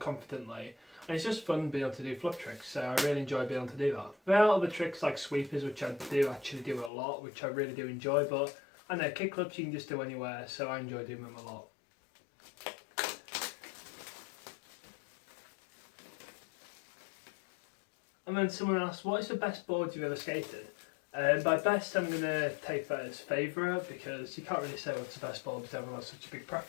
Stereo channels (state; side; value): drops out; right; at 6.9 s